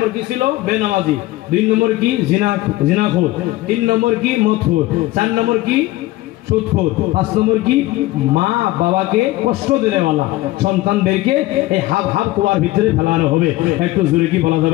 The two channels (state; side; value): quieter; right; 17.8 dB